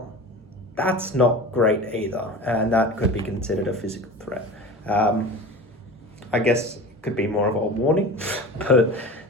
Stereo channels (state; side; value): normal; both; correlation 0.34